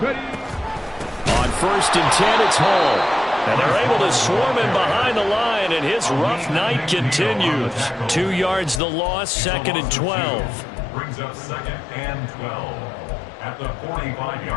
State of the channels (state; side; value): drops out; right; at 8.8 s